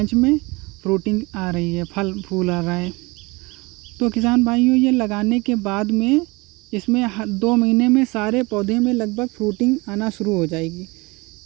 में फ्रूटिंग आ रही है, फल फूल आ रहा है। तो किसान भाइयों, ये लगाने के बाद में इसमें 2 महीने में सारे पौधे में लगभग फ्रूटिंग आना शुरू हो जाएगी।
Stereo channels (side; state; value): left; quieter; 25.0 dB